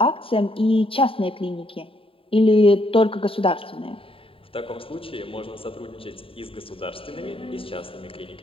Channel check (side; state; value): right; late; 0.26 ms